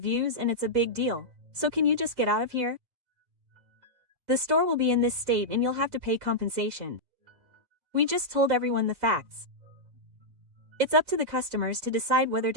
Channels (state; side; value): late; left; 4.1 ms